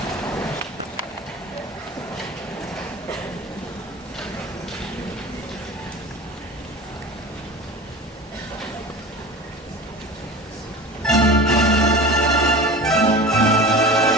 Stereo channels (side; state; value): both; normal; correlation 0.34